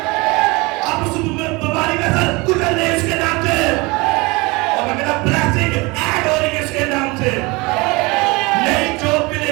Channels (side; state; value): left; quieter; 24.9 dB